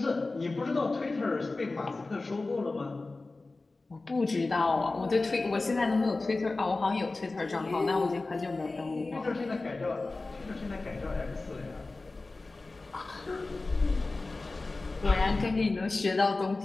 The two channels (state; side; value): quieter; right; 3.4 dB